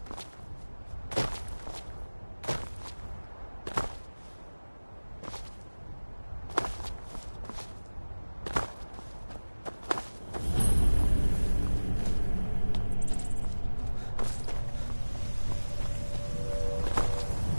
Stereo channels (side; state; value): both; inverted; correlation -1.00